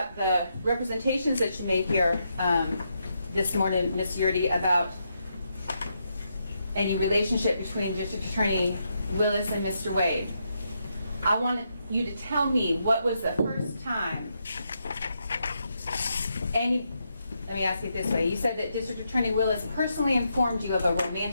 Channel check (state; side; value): inverted; both; correlation -0.81